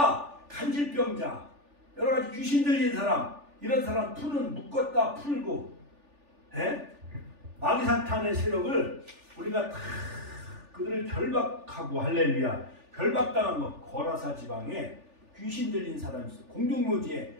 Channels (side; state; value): left; late; 3.4 ms